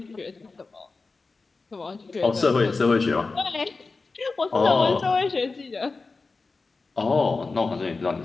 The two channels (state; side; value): quieter; right; 3.9 dB